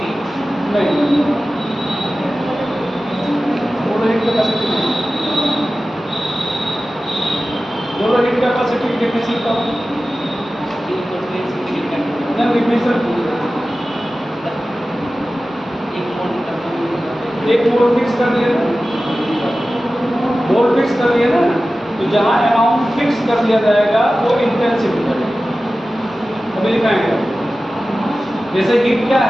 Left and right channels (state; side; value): normal; both; correlation 0.95